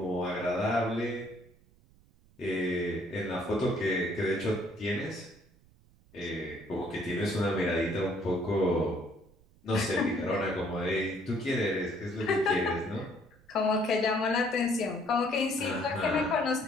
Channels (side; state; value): right; noise; rumble, 28 dB below the sound